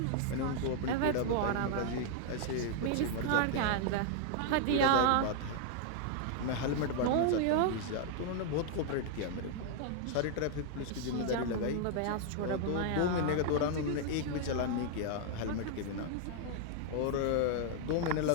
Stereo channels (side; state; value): both; different; correlation 0.00